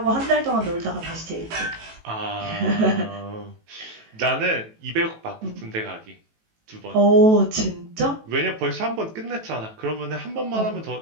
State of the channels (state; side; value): late; left; 18 ms